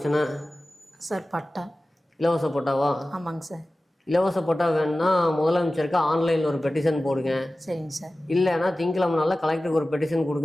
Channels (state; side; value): normal; both; correlation 0.96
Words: சார் பட்டா இலவச பட்டாவா? ஆமாங்க சார். இலவச பட்டா வேணும்னா முதலமைச்சருக்கு ஆன்லைனில் ஒரு பெட்டிஷன் போடுங்க. சரிங்க சார். இல்லைன்னா திங்கக்கிழமை நாளில் கலெக்டருக்கு ஒரு பெட்டிஷன்